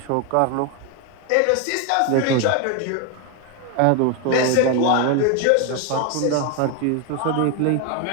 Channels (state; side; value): different; both; correlation 0.01